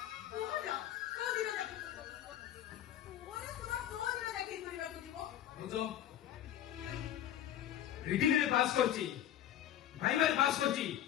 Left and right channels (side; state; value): right; quieter; 11.5 dB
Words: ରିଟିନରେ ପାସ୍ କରିଛି, ଭାଇବାରେ ପାସ୍ କରିଛି,